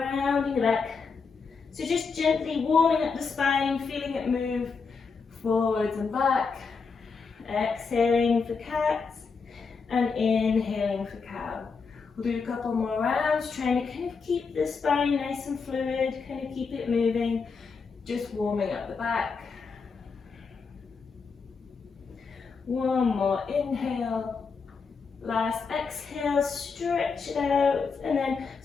the back. So just gently warming up the spine, feeling it move forwards and back. Exhaling for cat and inhaling for cow. We'll do a couple more rounds, trying to kind of keep the spine nice and fluid, kind of keep it moving, just warming up the back. One more inhale. Last exhale, stretch it out, and then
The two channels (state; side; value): quieter; right; 5.1 dB